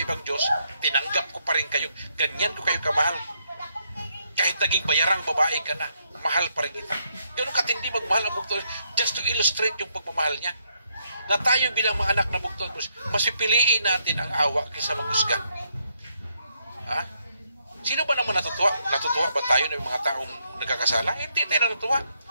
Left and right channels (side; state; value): both; inverted; correlation -0.76